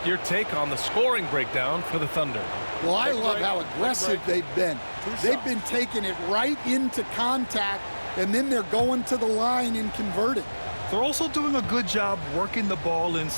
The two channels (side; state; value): both; inverted; correlation -1.00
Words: your take on the scoring breakdown for the Thunder. Well, I love how aggressive they've been. They've been taking it right into contact, and then they're going to the line and converting. They're also doing a good job working the ball